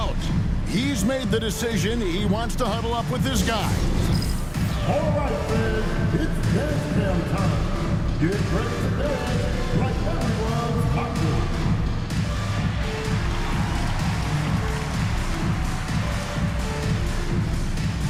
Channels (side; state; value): both; identical; correlation 1.00